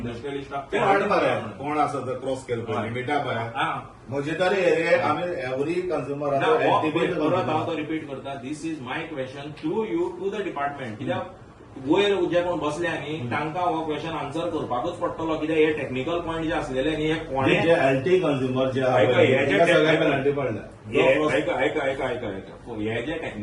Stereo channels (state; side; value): identical; both; correlation 1.00